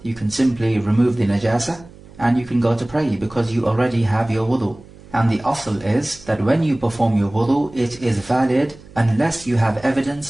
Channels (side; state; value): right; noise; hum, 21 dB below the sound